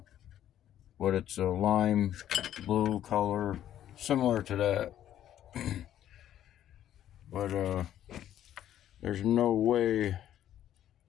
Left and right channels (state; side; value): quieter; right; 11.5 dB